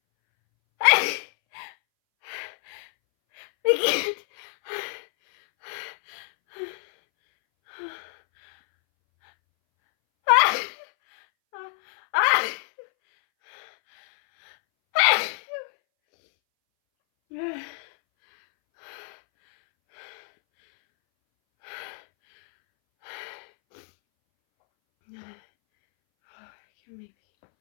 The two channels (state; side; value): silent; right; 61 dB below the other